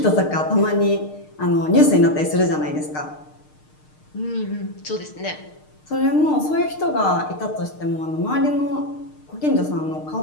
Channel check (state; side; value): late; right; 6.6 ms